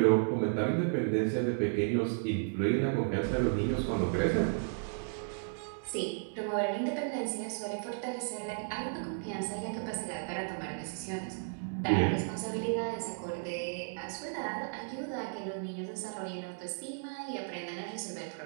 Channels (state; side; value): silent; left; digital silence